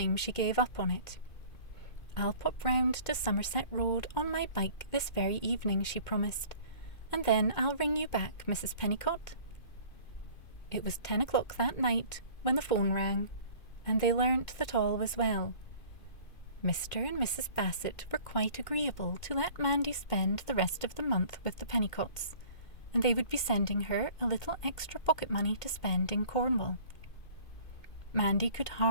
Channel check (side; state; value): right; late; 2.5 ms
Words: she gave up on it. I'll pop round to Somerset Road on my bike this very evening, she promised, and then I'll ring you back, Mrs. Pennycott. It was 10 o'clock that night when the phone rang, and they learnt that all was well. Mr. and Mrs. Bassett were quite agreeable to let Mandy spend the rest of the month with the Pennycotts, and they would be sending her a little extra pocket money to spend in Cornwall. Mandy could